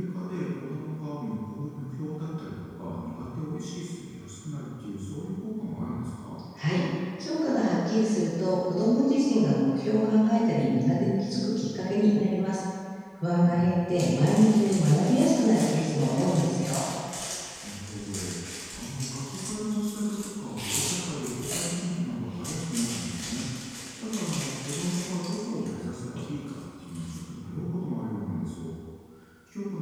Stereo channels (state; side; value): identical; both; correlation 1.00